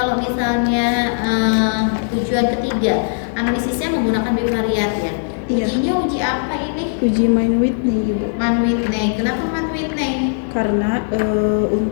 misalnya tujuan ketiga, analisisnya menggunakan bivariat ya. Ujinya uji apa ini? Uji Mann-Whitney, Ibu. Mann-Whitney. Kenapa Mann-Whitney? Karena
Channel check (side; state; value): right; silent; digital silence